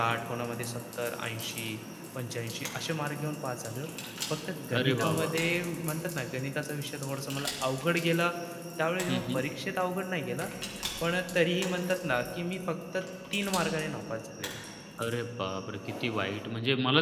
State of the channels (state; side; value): identical; both; correlation 1.00